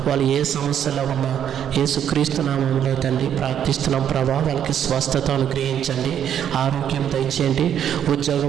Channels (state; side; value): quieter; left; 9.4 dB